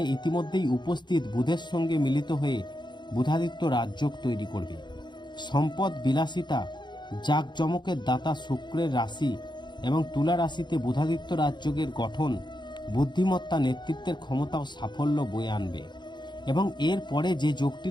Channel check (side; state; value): right; late; 0.22 ms